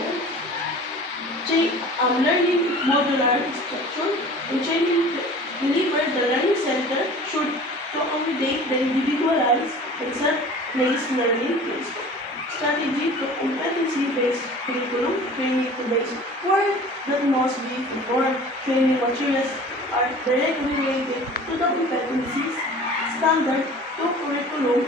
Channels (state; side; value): normal; both; correlation 0.43